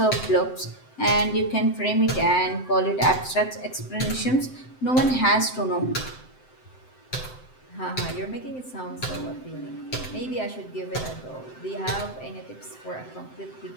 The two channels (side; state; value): right; late; 7.8 ms